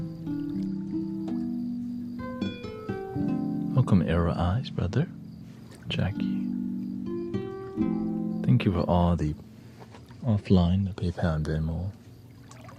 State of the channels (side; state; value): both; identical; correlation 1.00